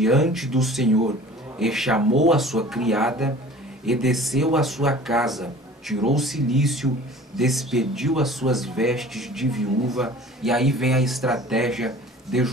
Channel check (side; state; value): both; normal; correlation 0.44